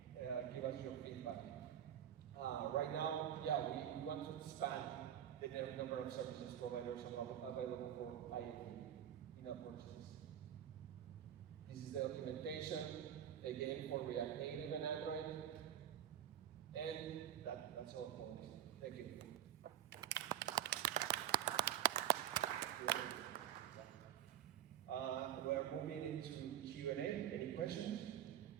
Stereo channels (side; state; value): left; quieter; 10.6 dB